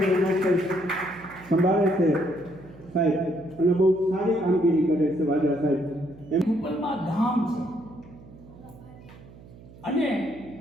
NSS સંભાળે છે સાહેબ, અને બહુ સારી કામગીરી કરે છે વાંધા સાહેબ. એમ ઉપરમાં ધામ છે અને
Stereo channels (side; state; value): right; noise; hum, 20 dB below the sound